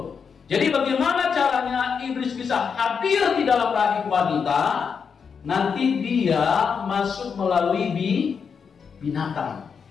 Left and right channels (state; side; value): quieter; right; 6.3 dB